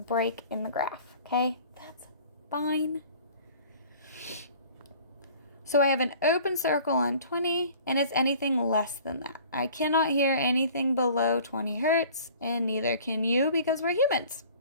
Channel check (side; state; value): both; inverted; correlation -0.48